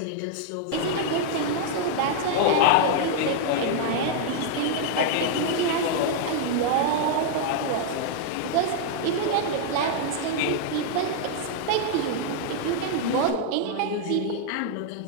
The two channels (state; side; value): different; both; correlation -0.01